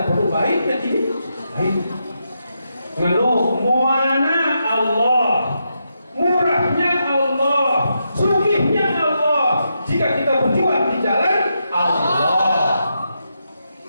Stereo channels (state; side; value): inverted; both; correlation -0.84